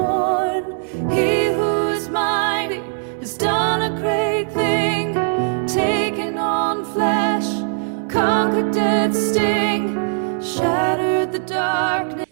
He who is mighty has done a great thing, taken on flesh, conquered death's sting, shattered the darkness.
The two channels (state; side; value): silent; left; 66 dB below the other